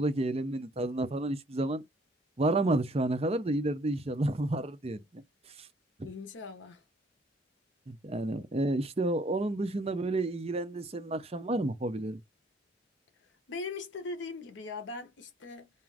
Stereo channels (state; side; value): normal; both; correlation 0.61